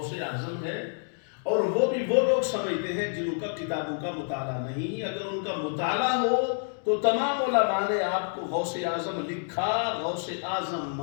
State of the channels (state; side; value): silent; right; digital silence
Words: اعظم ہے، اور وہ بھی وہ لوگ سمجھتے ہیں جن کا کتابوں کا مطالعہ نہیں۔ اگر ان کا مطالعہ ہو تو تمام علماء نے آپ کو غوث اعظم لکھا، غوث اعظم